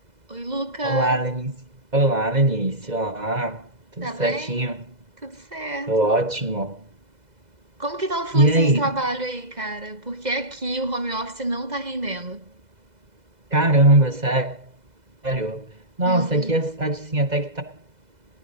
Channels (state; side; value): late; left; 2.0 ms